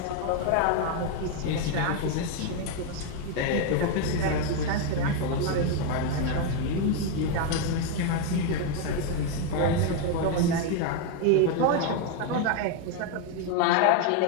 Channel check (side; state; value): both; different; correlation 0.01